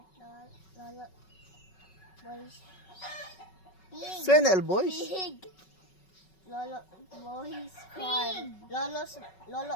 Lolo Boys Pig. Senel boys. Pig. Lolo Boys Farm. Lolo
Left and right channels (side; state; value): right; late; 5.3 ms